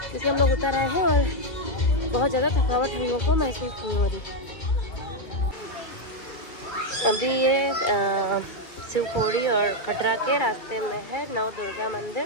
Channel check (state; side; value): late; right; 2.4 ms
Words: हम लोग उतर आए हैं और बहुत ज़्यादा थकावट हम लोग को महसूस नहीं हो रही। अभी ये शिवखोड़ी और कटरा के रास्ते में है नव दुर्गा मंदिर।